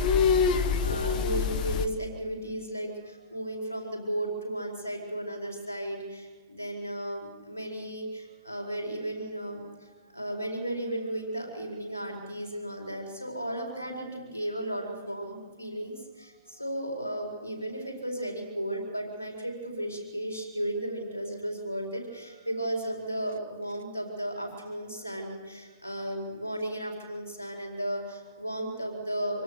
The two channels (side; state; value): both; inverted; correlation -0.52